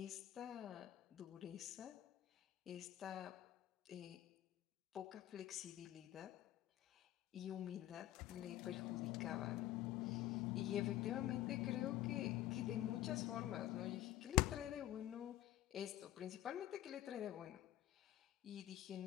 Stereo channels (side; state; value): right; quieter; 13.9 dB